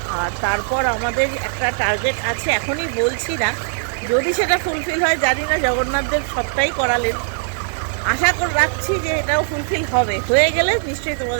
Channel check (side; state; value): left; silent; 65 dB below the other